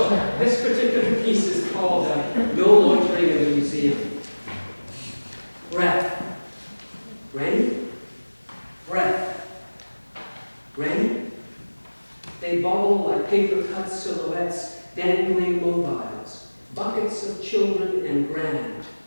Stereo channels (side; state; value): both; inverted; correlation -1.00